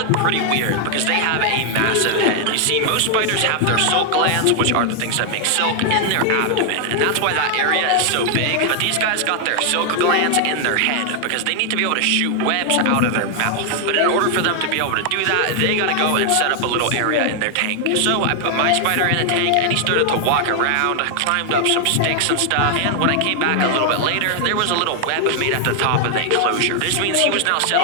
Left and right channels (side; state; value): both; different; correlation 0.00